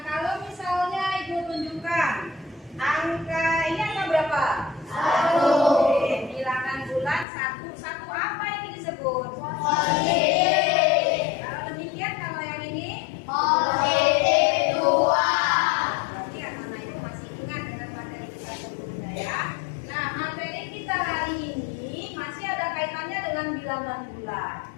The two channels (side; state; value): right; drops out; at 7.2 s